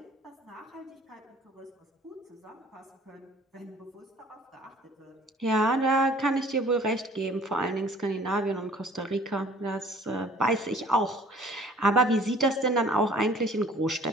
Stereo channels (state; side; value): normal; both; correlation 0.52